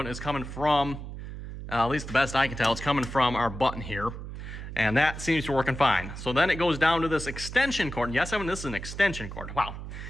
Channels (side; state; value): right; noise; hum, 9 dB below the sound